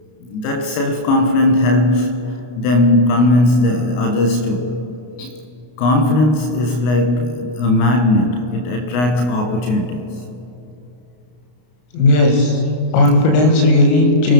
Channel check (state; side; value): late; right; 33 ms